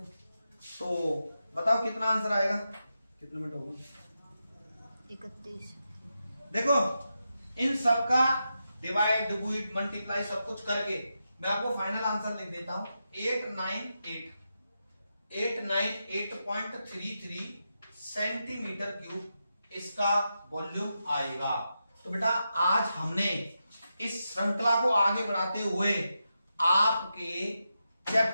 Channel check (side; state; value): both; inverted; correlation -0.88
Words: तो बताओ कितना आंसर आएगा, कितने मिनट होगा 31। देखो इन सब का डिवाइड डिवाइड मल्टीप्लाई सब कुछ करके मैं आपको फाइनल आंसर लिख देता हूं, 898.33 सेंटीमीटर क्यूब इसका वॉल्यूम आएगा। तो बेटा आज हमने इस श्रृंखला को आगे बढ़ाते हुए आपके